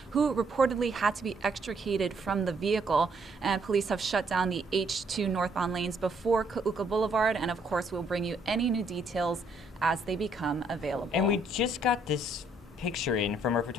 who reportedly had to be extricated from the vehicle. And police have shut down the H-2 northbound lanes before Ka'uka Boulevard, and of course we'll bring you any new details as they become available. And we just got this picture in from our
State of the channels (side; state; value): both; normal; correlation 0.69